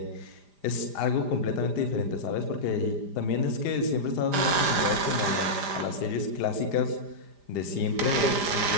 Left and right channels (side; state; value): left; late; 5.0 ms